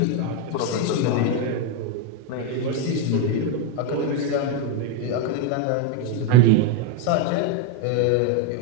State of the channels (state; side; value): different; both; correlation 0.02